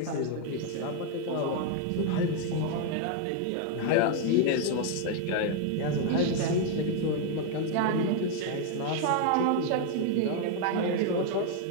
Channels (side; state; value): both; different; correlation 0.00